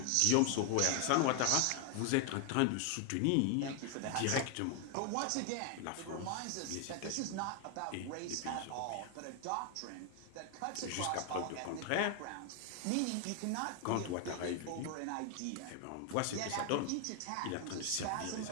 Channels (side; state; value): both; different; correlation 0.00